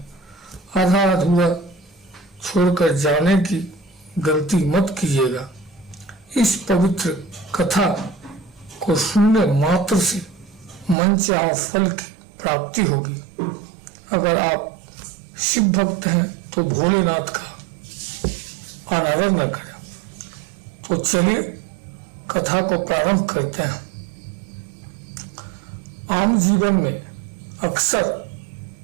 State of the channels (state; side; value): drops out; left; at 11.0 s